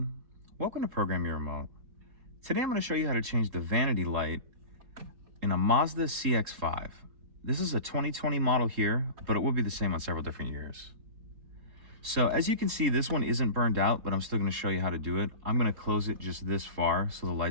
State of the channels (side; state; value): left; late; 4.2 ms